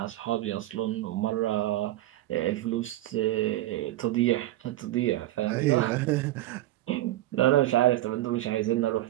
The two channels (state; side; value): quieter; left; 15.5 dB